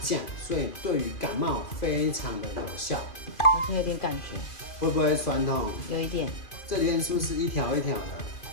降，所以对于感冒非常的有效。好像有点感觉，会不会酸痛？有一点。这里面是不是一条一条的？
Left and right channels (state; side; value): late; right; 2.5 ms